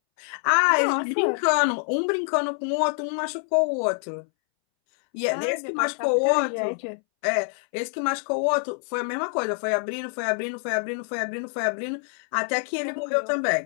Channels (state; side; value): silent; right; 61 dB below the other